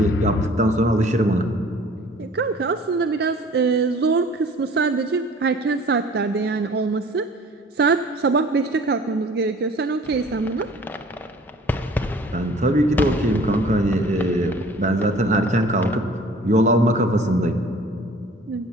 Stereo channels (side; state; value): both; normal; correlation 0.49